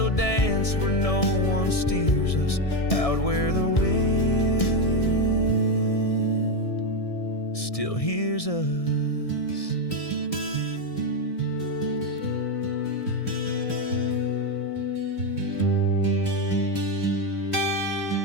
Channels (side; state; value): right; late; 1.6 ms